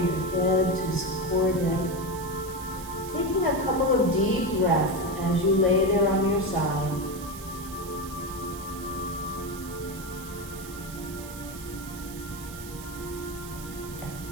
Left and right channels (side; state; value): right; noise; hiss, 14 dB below the sound